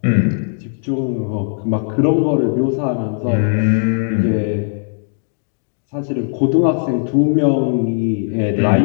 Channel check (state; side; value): silent; right; digital silence